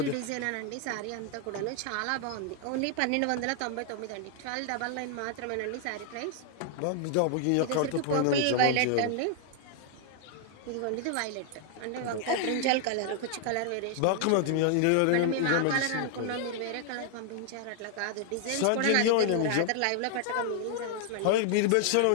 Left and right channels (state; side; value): different; both; correlation 0.00